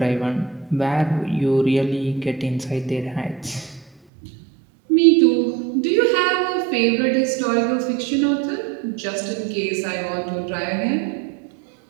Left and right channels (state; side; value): drops out; left; at 3.9 s